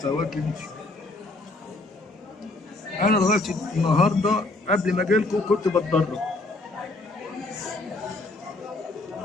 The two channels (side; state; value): right; quieter; 3.0 dB